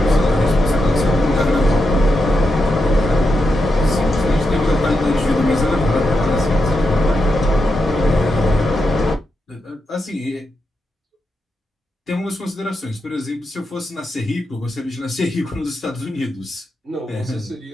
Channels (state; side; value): normal; both; correlation 0.86